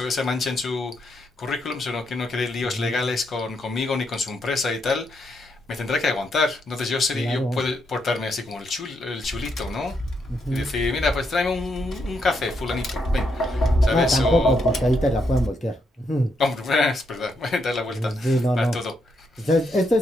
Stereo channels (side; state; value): both; normal; correlation 0.79